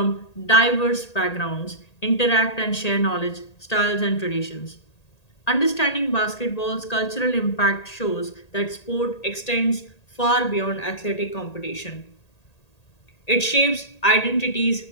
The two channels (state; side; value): late; right; 1.8 ms